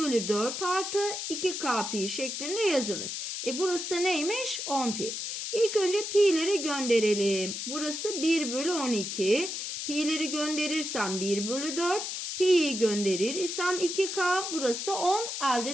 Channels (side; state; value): left; noise; hiss, 4 dB below the sound